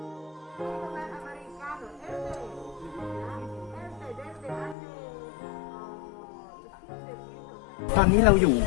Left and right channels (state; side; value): drops out; right; at 4.8 s